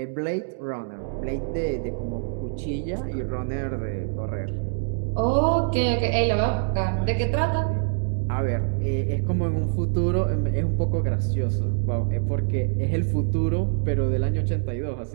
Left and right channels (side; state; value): left; silent; digital silence